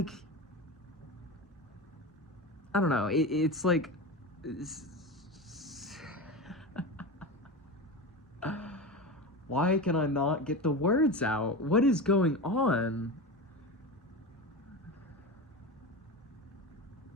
I don't know. It's like. Why can I not get the words out? What is going on?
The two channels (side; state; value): both; normal; correlation 0.24